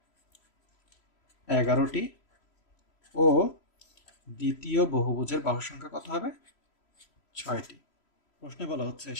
11টি ও দ্বিতীয় বহুভুজের বাহুর সংখ্যা কত হবে? 6টি। প্রশ্নে বলা হচ্ছে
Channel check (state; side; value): late; right; 3.0 ms